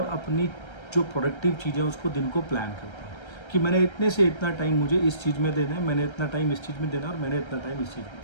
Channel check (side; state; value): right; late; 1.3 ms